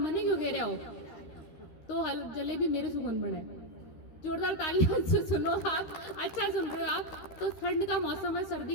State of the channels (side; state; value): right; late; 13 ms